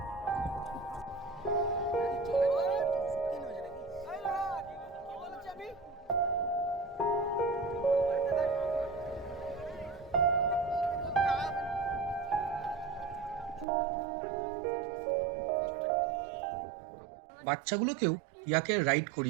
বাচ্চাগুলোকেও ইয়াকে রাইড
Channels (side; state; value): left; drops out; at 13.7 s